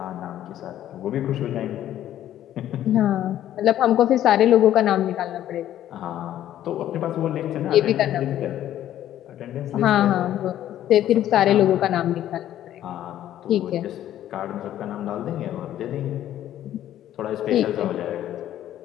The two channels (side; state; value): right; quieter; 12.1 dB